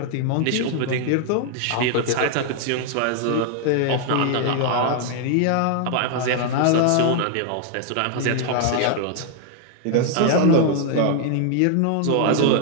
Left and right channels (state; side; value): different; both; correlation 0.00